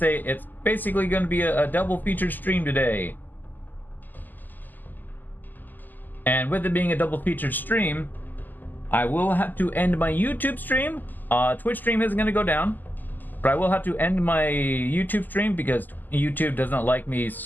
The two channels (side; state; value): right; late; 0.086 ms